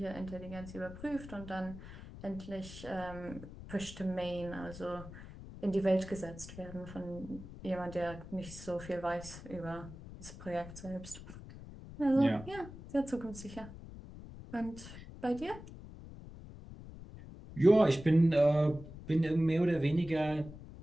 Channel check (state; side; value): noise; left; rumble, 14 dB below the sound